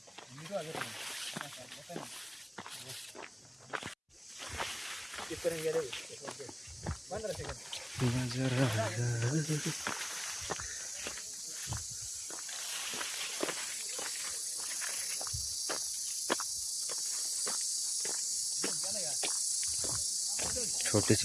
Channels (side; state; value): both; identical; correlation 1.00